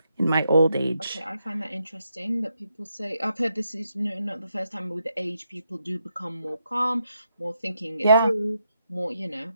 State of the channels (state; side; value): inverted; both; correlation -0.81